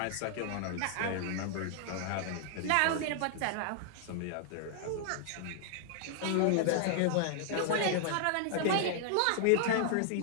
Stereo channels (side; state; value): both; different; correlation -0.01